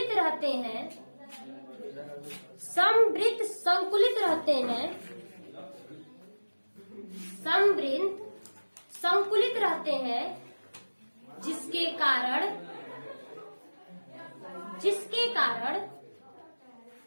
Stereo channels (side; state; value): both; inverted; correlation -1.00